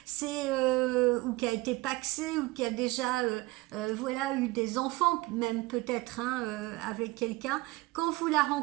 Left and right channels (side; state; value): left; quieter; 21.3 dB